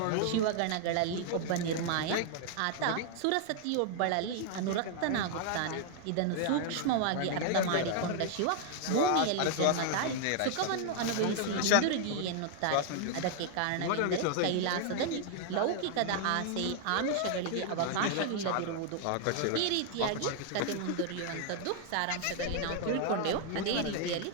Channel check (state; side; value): different; both; correlation 0.00